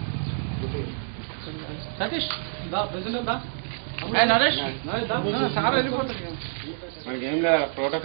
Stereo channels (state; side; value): silent; left; digital silence